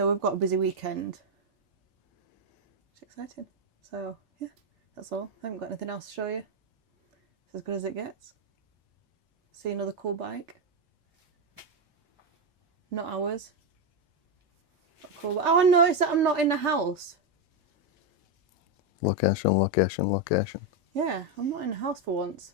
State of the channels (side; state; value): both; normal; correlation 0.06